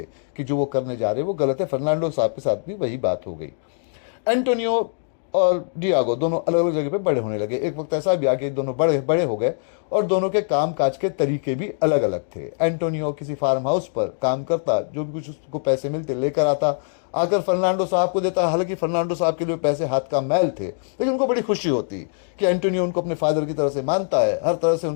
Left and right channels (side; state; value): right; silent; digital silence